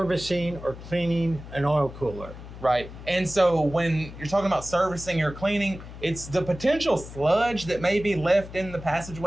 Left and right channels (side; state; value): left; noise; hum, 14 dB below the sound